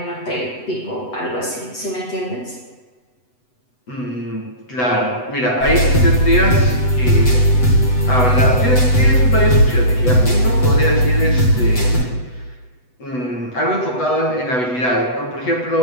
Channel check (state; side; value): late; right; 8.0 ms